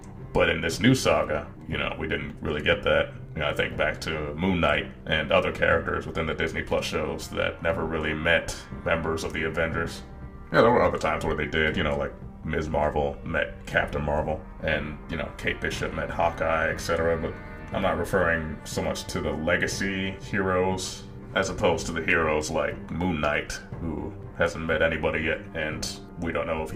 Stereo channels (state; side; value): identical; both; correlation 1.00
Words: But in this new saga, we didn't really get that. I think back to Moon Knight and other characters within the Disney Plus shows that never really met members of the Avengers. There were other times where they did, like Ms. Marvel met Captain Marvel, and, Kate Bishop met Hawkeye, etc. But I'm not referring so much to the legacy heroes as opposed to the heroes like Moon Knight, who hasn't met anybody yet, and we don't know if